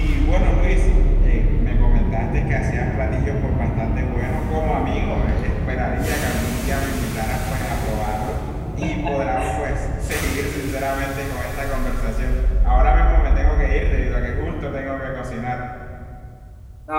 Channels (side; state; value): both; identical; correlation 1.00